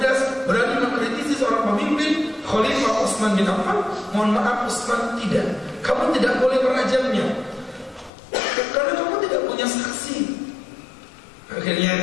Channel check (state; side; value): drops out; right; at 8.1 s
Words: berani mengkritisi seorang pemimpin, Khalifah Utsman bin Affan. Mohon maaf Utsman, tidak, kamu tidak boleh merajamnya karena kamu tidak punya saksi.